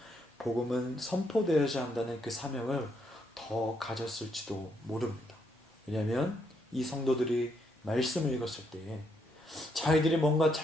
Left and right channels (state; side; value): normal; both; correlation 0.75